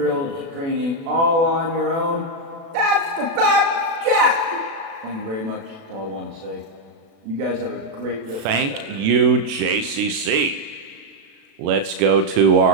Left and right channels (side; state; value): left; late; 36 ms